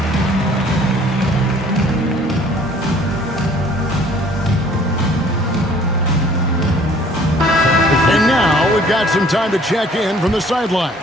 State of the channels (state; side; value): normal; both; correlation 0.55